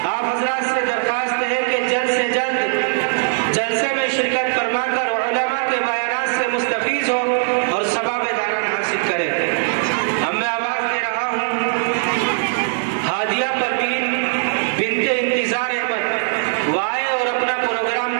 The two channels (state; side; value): silent; left; digital silence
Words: آپ حضرات سے درخواست ہے کہ جلد سے جلد جلسے میں شرکت فرما کر علماء کے بیانات سے مستفیض ہو اور ثواب داران حاصل کرے۔ اب میں آواز دے رہا ہوں ہادیہ پروین بنت انتظار احمد، وہ آئے اور اپنا پروگرام